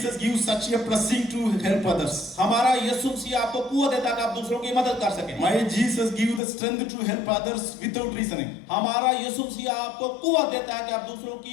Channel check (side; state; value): right; drops out; at 6.4 s